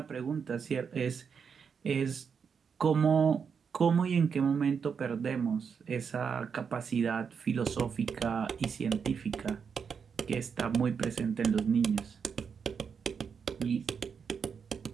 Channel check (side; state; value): left; quieter; 6.4 dB